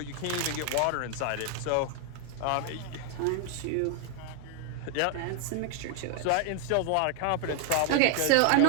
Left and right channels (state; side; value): different; both; correlation 0.00